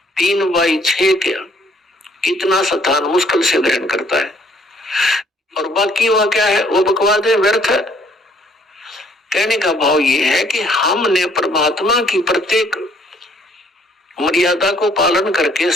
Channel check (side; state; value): both; normal; correlation 0.63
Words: 3x6 के कितना स्थान मुश्किल से ग्रहण करता है, और बाकी वह क्या है, वो बकवाद है, व्यर्थ है। कहने का भाव ये है कि हमने परमात्मा की प्रत्येक मर्यादा को पालन करके